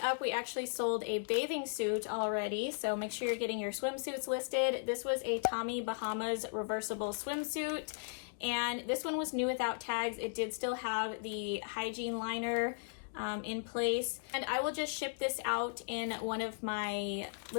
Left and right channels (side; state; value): right; silent; digital silence